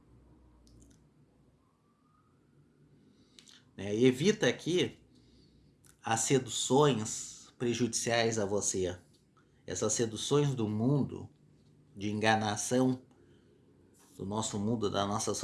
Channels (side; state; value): both; identical; correlation 1.00